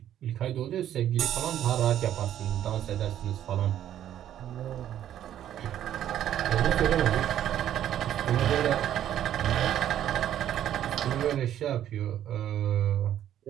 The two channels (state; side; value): quieter; left; 11.1 dB